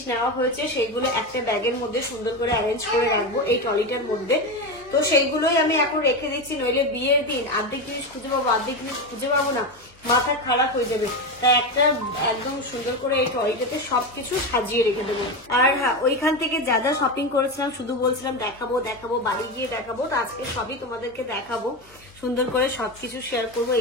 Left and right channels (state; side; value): normal; both; correlation 0.17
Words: নেওয়া হয়েছে সেইগুলো একটা ব্যাগের মধ্যে সুন্দর করে অ্যারেঞ্জ করে রাখবো এই ট্রলিটার মধ্যে। তো সেইগুলোই আমি এখন রেখে দিচ্ছি, নইলে বিয়ের দিন অর্ধেক জিনিস খুঁজে পাবো, অর্ধেক জিনিস খুঁজে পাবো না, মাথা খারাপ হয়ে যাবে। তাই একটা একদম সুন্দর করে এই ট্রলিটাতে সবকিছু সাজিয়ে রেখে দেবো। আর হ্যাঁ, ওইখান থেকে যা যা শপিং করেছিলাম শুধু বলছিলাম দেখাবো, বাড়ি গিয়ে দেখাবো, তো আজকে সবই তোমাদেরকে দেখাবো, সুন্দর করে সবকিছু শেয়ার করবো।